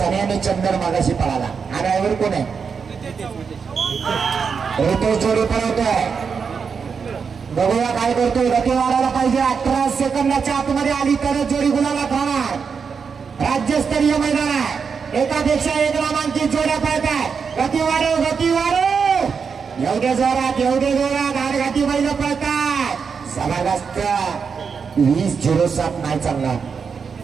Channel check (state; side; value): quieter; left; 5.9 dB